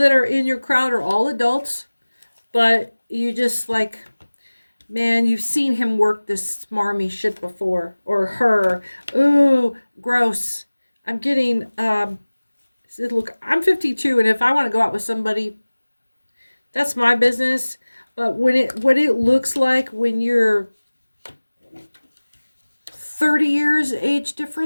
are in your crowd are all adults, but you just like, man, you've seen him work this smarmy shit before, or her. Ooh, gross. I'm getting, look, I'm 52, and if I want to go out with somebody, that's my business. But what it looks like when you're 30 years age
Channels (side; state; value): both; inverted; correlation -1.00